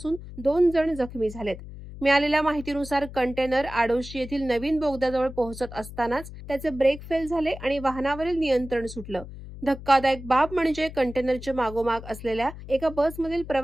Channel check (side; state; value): left; noise; hum, 13 dB below the sound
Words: 2 जण जखमी झालेत. मिळालेल्या माहितीनुसार कंटेनर आडोशी येथील नवीन बोगद्याजवळ पोहोचत असतानाच त्याचे ब्रेक फेल झाले आणि वाहनावरील नियंत्रण सुटलं. धक्कादायक बाब म्हणजे कंटेनरच्या मागोमाग असलेल्या एका बसमधील